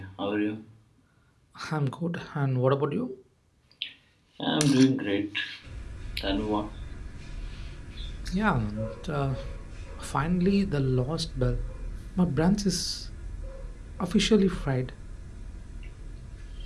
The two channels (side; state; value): both; identical; correlation 1.00